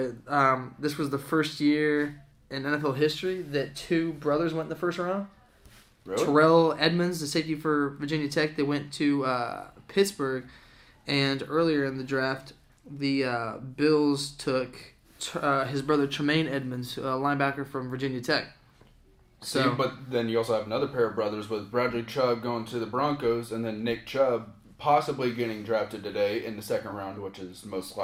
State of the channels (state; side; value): identical; both; correlation 1.00